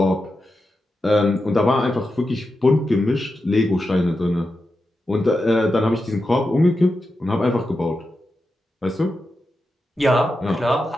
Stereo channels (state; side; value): normal; both; correlation 0.89